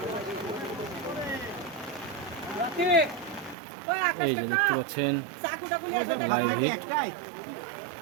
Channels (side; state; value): left; drops out; at 3.6 s